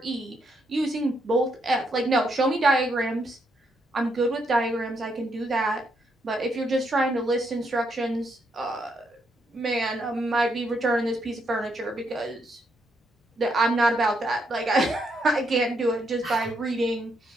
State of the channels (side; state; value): both; normal; correlation 0.77